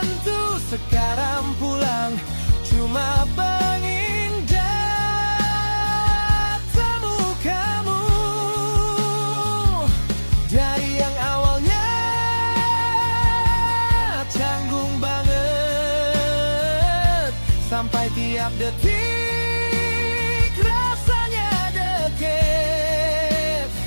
sekarang pulang cuma pengingat temu kamu. Dari yang awalnya canggung Setiap detik rasanya deket.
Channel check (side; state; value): both; inverted; correlation -1.00